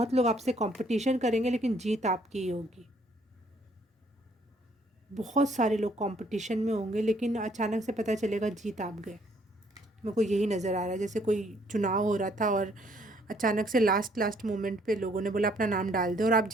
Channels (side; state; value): both; normal; correlation 0.64